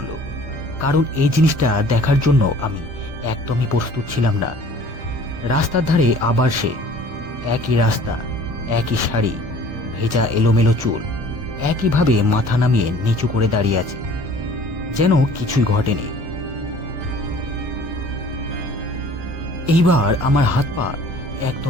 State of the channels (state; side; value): late; left; 1.2 ms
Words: কারণ এই জিনিসটা দেখার জন্য আমি একদমই প্রস্তুত ছিলাম না। রাস্তার ধারে আবার সে একই রাস্তা, একই শাড়ি, ভেজা এলোমেলো চুল, একইভাবে মাথা নামিয়ে নিচু করে দাঁড়িয়ে আছে, যেন কিছুই ঘটেনি। এইবার আমার হাত পা